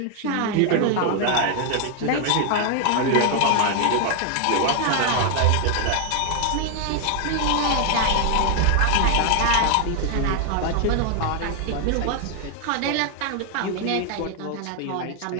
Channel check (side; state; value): both; different; correlation 0.00